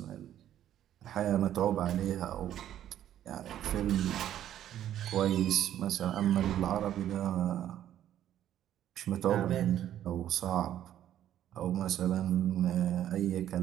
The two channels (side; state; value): left; quieter; 11.5 dB